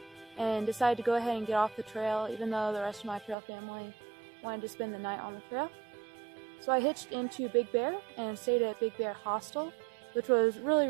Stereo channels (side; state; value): left; drops out; at 3.4 s